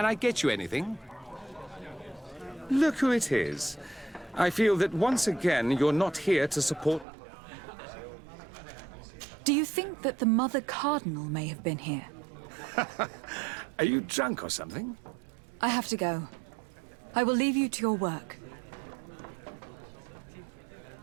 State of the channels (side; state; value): left; drops out; at 7.1 s